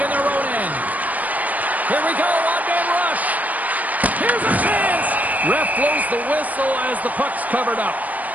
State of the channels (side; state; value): left; late; 0.076 ms